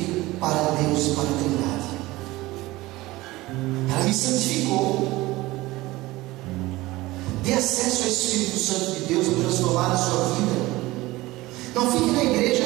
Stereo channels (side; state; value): left; quieter; 19.3 dB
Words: para Deus e para a Trindade. Ela me santificou. Dê acesso ao Espírito Santo de Deus para transformar a sua vida. Não fique na